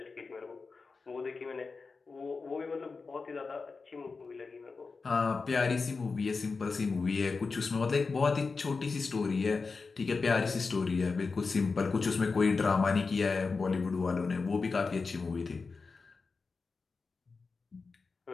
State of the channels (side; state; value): right; quieter; 4.4 dB